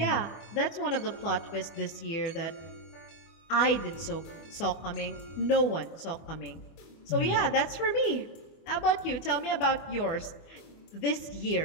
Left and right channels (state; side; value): late; right; 24 ms